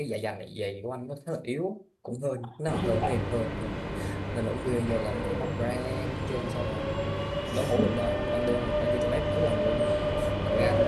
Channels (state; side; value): identical; both; correlation 1.00